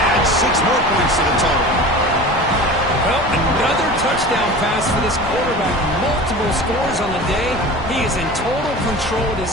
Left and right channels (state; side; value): noise; left; rumble, 12 dB below the sound